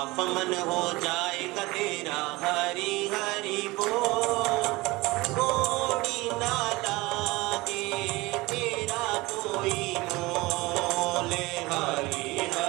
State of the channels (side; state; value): left; quieter; 21.7 dB